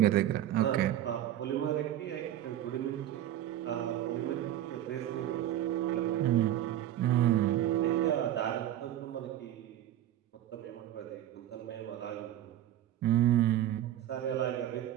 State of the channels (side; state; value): left; quieter; 12.3 dB